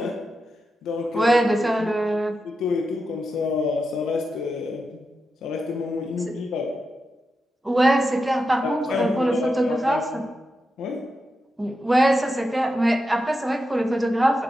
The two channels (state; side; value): normal; both; correlation 0.88